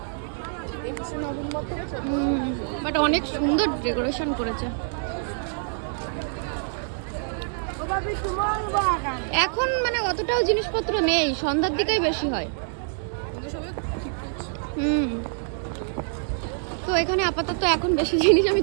বাট অনেক সুন্দর ডেকোরেশন করেছে। এখন মানে অতটাও জিনিসপত্র নেই, সন্ধ্যার দিকেই বেশি হয়। তো এখানে আপাতত এখন বেশি জিনিস আমি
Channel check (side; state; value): left; silent; digital silence